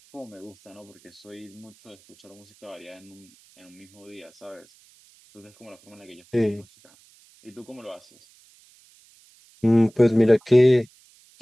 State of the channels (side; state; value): right; noise; hiss, 28 dB below the sound